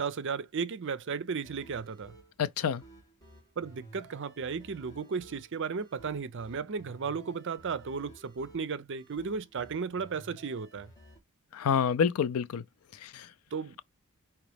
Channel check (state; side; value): normal; both; correlation -0.05